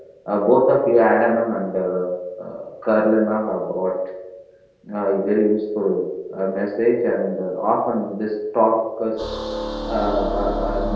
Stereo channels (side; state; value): both; identical; correlation 1.00